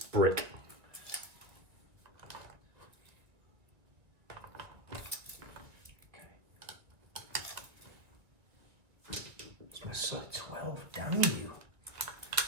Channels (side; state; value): left; late; 1.7 ms